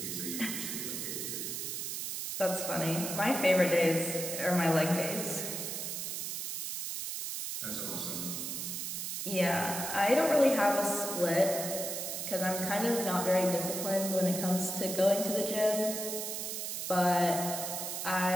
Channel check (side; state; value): right; noise; hiss, 4 dB below the sound